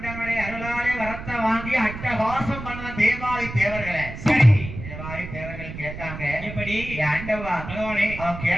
அருளாலே வரத்தை வாங்கி அட்டகாசம் பண்ண தேவாதி தேவர்களை. சரி, தேவாதி தேவர்கள் கேட்டாங்க, எப்படி? ஆண்டவா பகவானே. அவன்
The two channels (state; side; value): noise; right; rumble, 10 dB below the sound